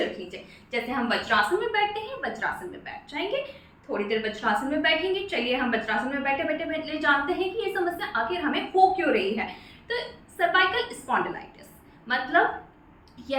रख लीजिए। जैसे हम वज्रासन में बैठते हैं, वज्रासन में बैठ जाएंगे। थोड़ी देर वज्रासन में बैठेंगे। चलिए हम वज्रासन में बैठे बैठे बैठे जानते हैं कि ये समस्या आखिर हमें हो क्यों रही है। तो सर्वाइकल स्पॉन्डिलाइटिस मतलब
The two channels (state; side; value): identical; both; correlation 1.00